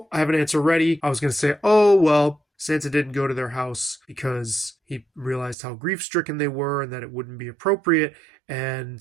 I have an answer ready. I was gonna say, oh well, Santa didn't go to their house because he realized how grief-stricken they were and that it wouldn't be appropriate.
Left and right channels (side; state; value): left; drops out; at 5.6 s